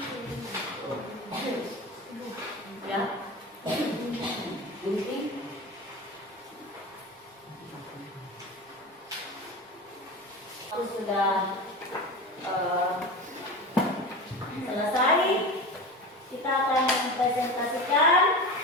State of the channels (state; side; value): normal; both; correlation 0.28